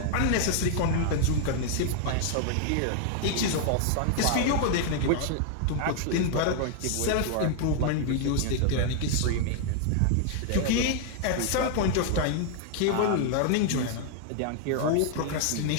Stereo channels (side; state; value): both; different; correlation 0.00